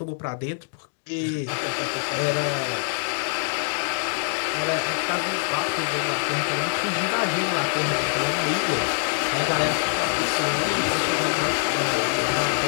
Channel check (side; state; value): right; silent; 62 dB below the other